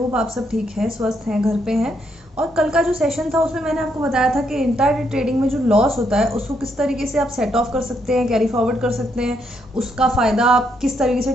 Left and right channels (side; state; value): both; normal; correlation 0.76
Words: आप सब ठीक हैं, स्वस्थ हैं, घर पे हैं। और कल का जो सेशन था उसमें मैंने आपको बताया था कि इंट्राडे ट्रेडिंग में जो लॉस होता है उसको किस तरीके से आप सेट ऑफ कर सकते हैं, कैरी फॉरवर्ड कर सकते हैं, उसका फ़ायदा आप किस तरीके से